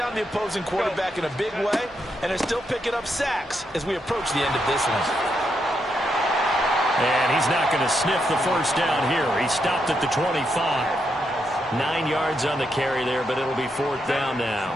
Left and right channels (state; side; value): normal; both; correlation 0.81